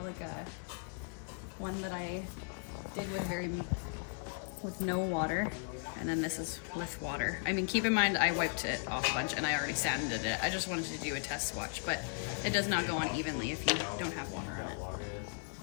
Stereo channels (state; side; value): silent; right; 53 dB below the other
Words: like a one that I did with no water, and then this is with water. I mean, keep in mind I wiped it off a bunch and I already sanded it. I just wanted to do a test swatch, but it does not go on evenly if you don't have water in